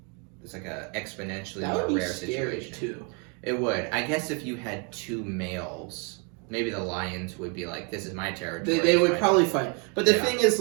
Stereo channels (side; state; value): left; quieter; 35.3 dB